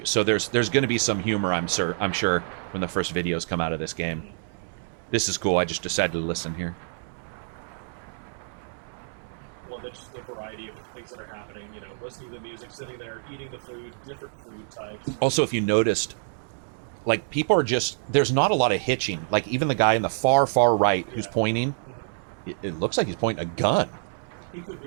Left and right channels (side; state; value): left; silent; 60 dB below the other